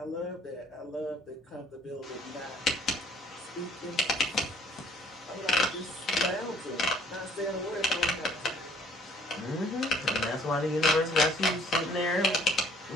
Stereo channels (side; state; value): both; normal; correlation 0.58